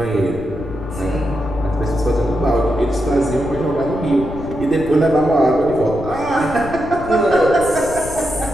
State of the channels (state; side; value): noise; left; rumble, 12 dB below the sound